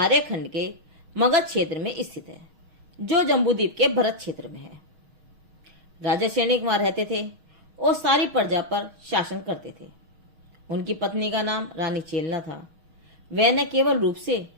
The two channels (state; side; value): late; left; 6.3 ms